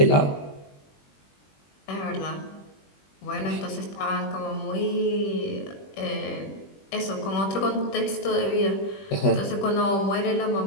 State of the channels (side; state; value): right; late; 21 ms